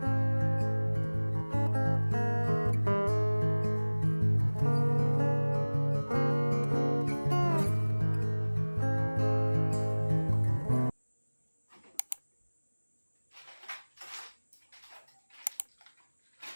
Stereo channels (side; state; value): both; inverted; correlation -1.00